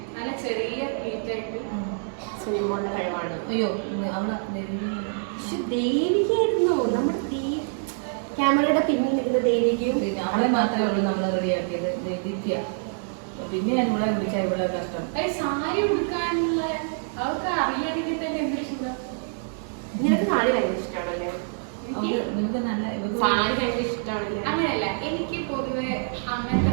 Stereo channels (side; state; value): left; silent; 58 dB below the other